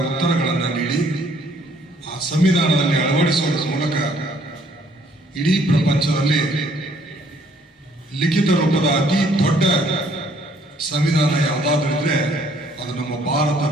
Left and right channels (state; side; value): normal; both; correlation 0.63